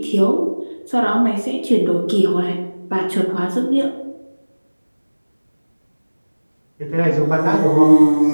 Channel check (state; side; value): inverted; both; correlation -1.00